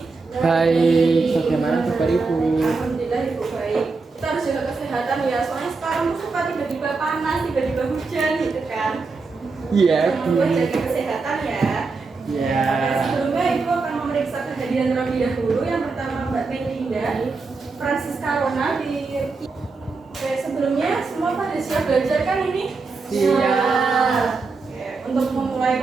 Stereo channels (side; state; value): left; quieter; 4.2 dB